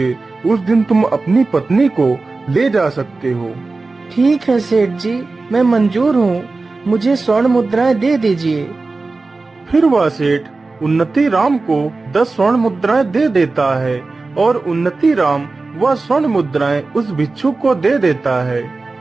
उस दिन तुम अपनी पत्नी को ले जा सकते हो। ठीक है सेठ जी, मैं मंजूर हूँ। मुझे स्वर्ण मुद्राएं दे दीजिए। फिर वह सेठ उन्नति राम को 10 स्वर्ण मुद्राएं दे देता है और उन्नति राम वह स्वर्ण मुद्राएं उस भिक्षुक को दे देता है।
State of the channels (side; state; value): left; quieter; 3.7 dB